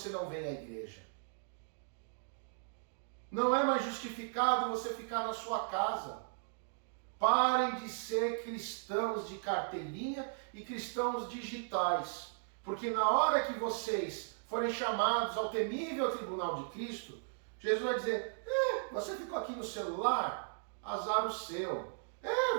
não vem à igreja? Não é mais justificado você ficar na sua casa. Parem de ser cristãos de carteirinha e cristãos digitais. Porque na hora que vocês forem chamados ao temível tribunal de Cristo, Jesus vai dizer, você ficou aqui no celular? Azar o seu.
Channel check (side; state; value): left; silent; digital silence